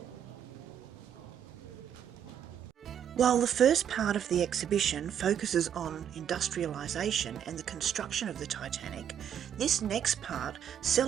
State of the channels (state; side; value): quieter; left; 9.1 dB